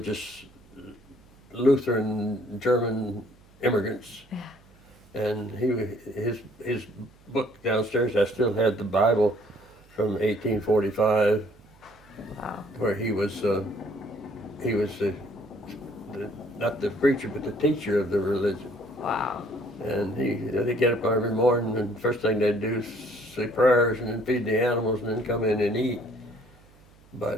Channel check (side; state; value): right; noise; hum, 27 dB below the sound